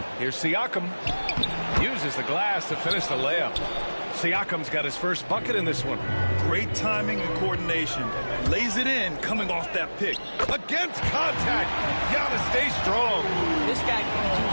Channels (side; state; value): both; inverted; correlation -1.00